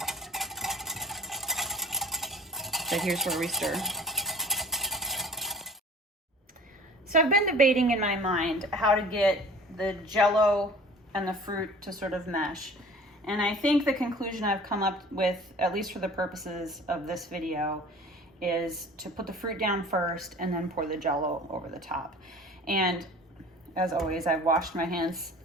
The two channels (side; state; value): both; normal; correlation 0.45